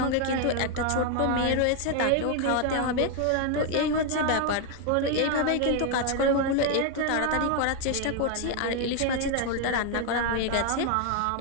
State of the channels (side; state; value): both; different; correlation 0.01